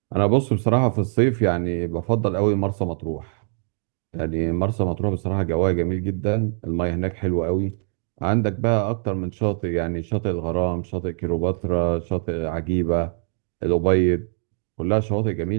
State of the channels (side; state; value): left; silent; digital silence